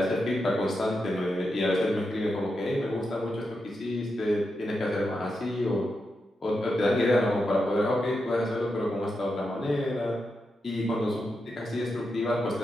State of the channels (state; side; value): normal; both; correlation 0.87